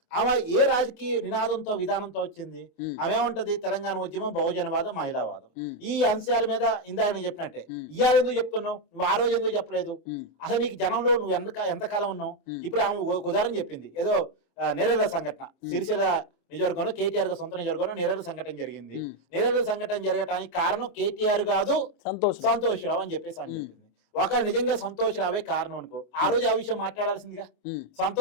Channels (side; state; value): right; late; 26 ms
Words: ఆమె ఏ రాజకీయ నినాదంతో విధానంతో వచ్చింది? ఆమె ఏమంటది? తెలంగాణ ఉద్యమం, బహుజనవాదం, మహిళావాదం, ఈ అంశాల మీద ఇందాక నేను చెప్పినట్టే ఇవాళ ఎందుకు చెప్తున్నావు, నువ్వు ఆ రోజు ఎందుకు చెప్పలేదు? అసలు నీకు జనంలో నువ్వు ఎంతకాలం ఉన్నావు? ఇప్పుడు ఆమె ఉదాహరణ చెప్పింది, ఏదో నెరెల సంఘటన, సిరిసిల్ల నియోజకవర్గంలో కేటీఆర్ సొంత నియోజకవర్గంలో నెరెల సంఘటన జరిగింది. నెరెల సంఘటన జరగటానికి కారణం కేటీఆర్ కాదు, సంతోష్ రావు అని చెప్పేసి అని చెప్పింది. ఒకవేళ నిజంగా సంతోష్ రావే కారణం అనుకో, ఆ రోజు ఆ విషయం మాట్లాడాల్సిందిగా,